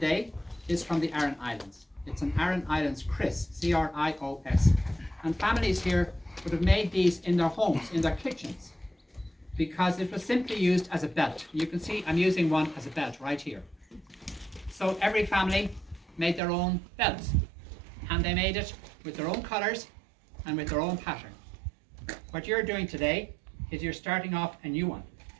is from the Aran Islands. It's an Aran Islands Chris, C-R-I-O-S. And families here would have made these in their homes, in their kitchens, because it was simply used as a belt. You can see I'm using one as a belt right here. So every family made their own belts, and they made it with their own colors and with their own pattern. What you're doing today is you're starting off a new one,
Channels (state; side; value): drops out; left; at 16.4 s